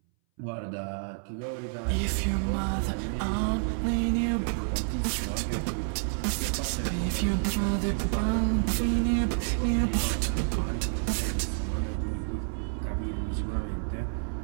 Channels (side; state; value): left; silent; 59 dB below the other